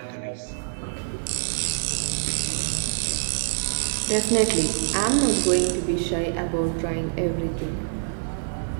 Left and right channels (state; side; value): silent; left; digital silence